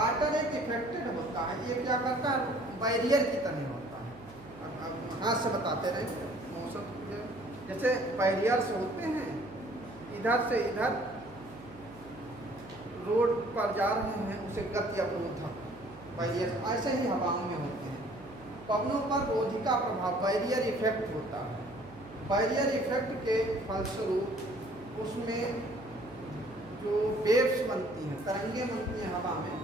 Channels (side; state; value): right; noise; hum, 20 dB below the sound